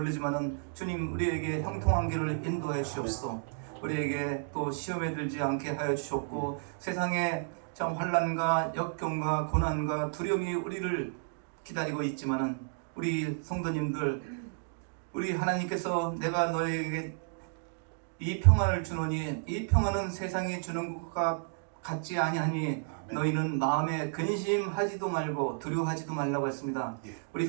주님 우리에게 형통한 길을 인도해 주옵소서. 우리에게 또 시험에 들지 않게 하여 주셨고 세상에 참 환난과 역경과 고난과 두려움이 우리를 기다리고 있지만은 우리 성도님들 우리 하나님께서 내가 너에게 이 평안을 주노니 이 평안은 세상이 주는 것과 같지 아니하니 너희는 마음에 근심하지도 말고 두려워하지도 말라고 했습니다. 우리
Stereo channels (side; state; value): left; silent; digital silence